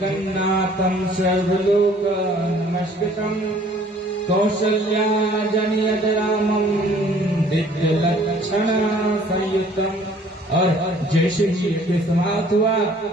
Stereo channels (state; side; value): normal; both; correlation 0.56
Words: सर्वलोक नमस्कृतं कौसल्या जनयद रामं दिव्यलक्षण संयुक्तम। और जैसे ही यज्ञ समाप्त हुआ